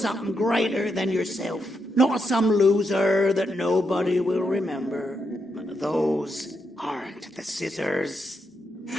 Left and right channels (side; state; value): both; normal; correlation 0.82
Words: greater than yourself, not as some loser that nobody will remember. Those aren't the scissors.